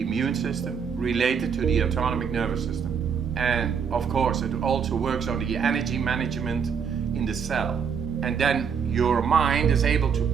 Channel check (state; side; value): quieter; left; 6.8 dB